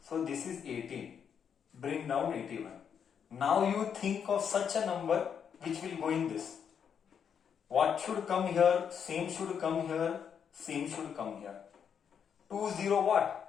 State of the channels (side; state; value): right; quieter; 7.6 dB